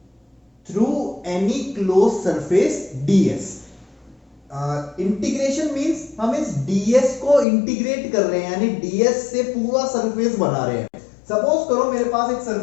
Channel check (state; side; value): drops out; right; at 7.5 s